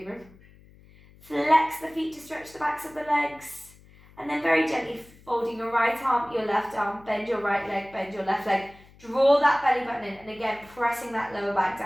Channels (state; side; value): noise; left; hum, 25 dB below the sound